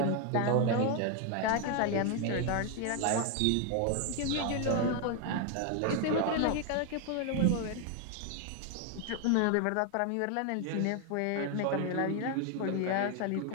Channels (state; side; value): different; both; correlation 0.01